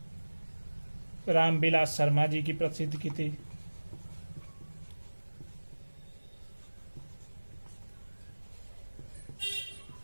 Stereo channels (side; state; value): both; inverted; correlation -1.00